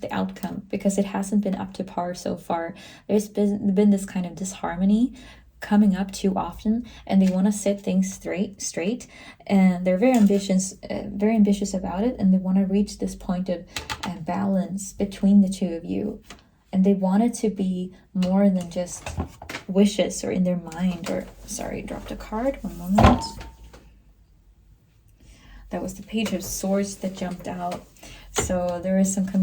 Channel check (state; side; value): identical; both; correlation 1.00